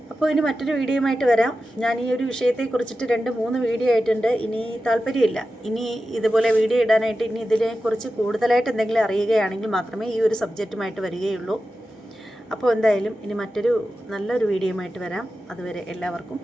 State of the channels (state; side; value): normal; both; correlation 0.92